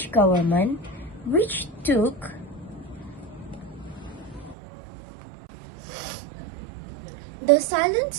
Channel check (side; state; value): left; drops out; at 4.5 s